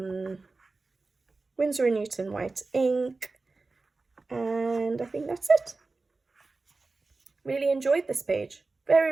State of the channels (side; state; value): left; quieter; 3.7 dB